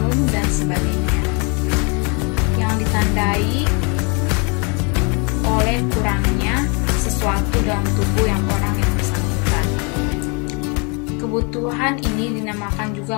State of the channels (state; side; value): quieter; right; 33.8 dB